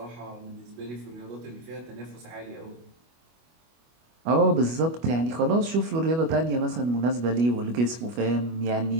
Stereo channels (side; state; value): left; late; 25 ms